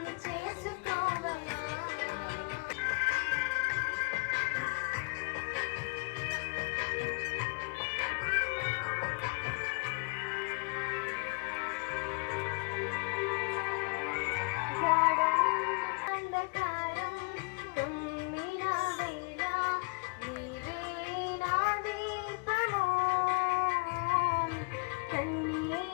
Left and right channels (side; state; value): right; quieter; 32.1 dB